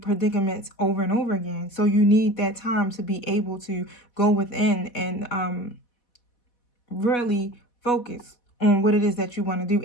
over and over again. So you need that time to be able to go within and really focus on what it is that you want to do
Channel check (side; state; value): right; late; 4.1 ms